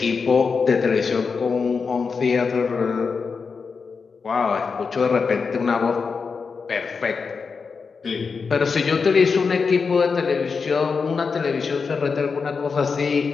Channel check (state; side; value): quieter; right; 5.2 dB